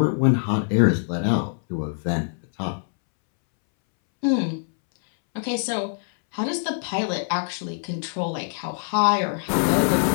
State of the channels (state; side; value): silent; right; 63 dB below the other